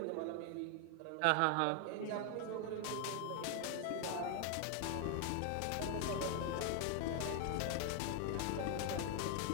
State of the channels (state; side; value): different; both; correlation 0.00